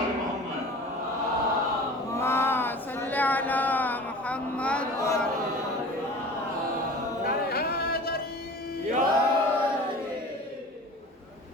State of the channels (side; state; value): both; normal; correlation 0.40